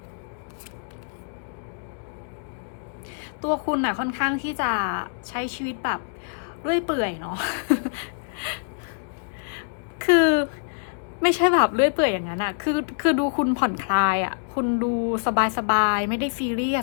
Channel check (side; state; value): right; silent; digital silence